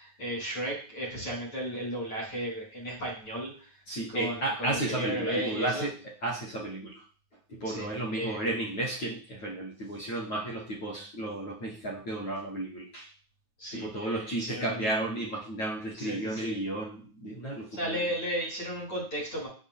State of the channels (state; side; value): late; right; 9.4 ms